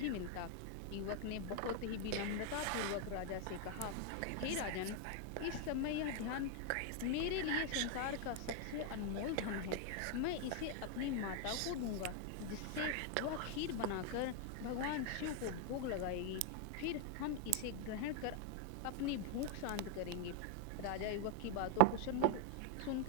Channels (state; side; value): different; both; correlation 0.00